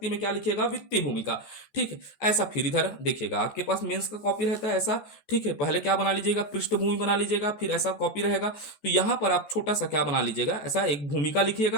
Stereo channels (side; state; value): right; late; 14 ms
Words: में क्या लिखेगा, वित्तीय भूमिका, ठीक है। ऐसा फिर इधर देखिएगा, आपके पास मेंस का कॉपी रहता है ऐसा, ठीक है, पहले क्या बना लीजिएगा, पृष्ठभूमि बना लीजिएगा, फिर ऐसा कॉपी रहेगा, तो यहां पर आप छोटा सा क्या बना लीजिएगा, ऐसा एक भूमिका